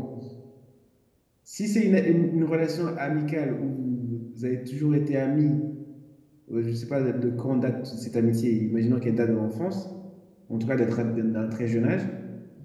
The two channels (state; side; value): identical; both; correlation 1.00